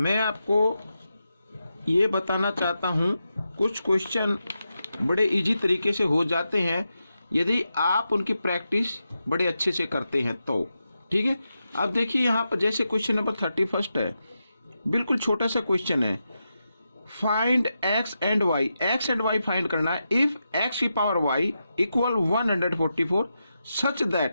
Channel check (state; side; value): inverted; both; correlation -0.88